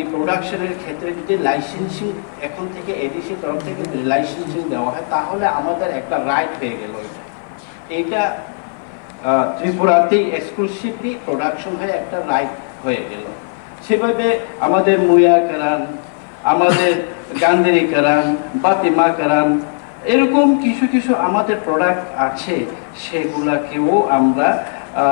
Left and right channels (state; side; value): silent; right; 55 dB below the other